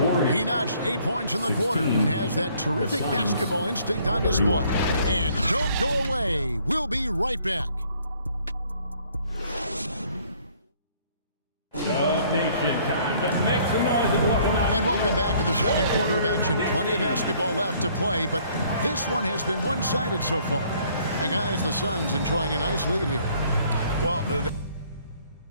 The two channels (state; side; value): inverted; both; correlation -0.61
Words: He notched 8 points in the quarter and has that terrific basketball instinct on display. And don't go away. We'll be right back. Nation, time to make some noise and welcome out. And welcome back to the second quarter of action. Plenty of basketball left to play, but this one has been one-sided so far. And guys, the Suns enjoying a nice lead here. Well, the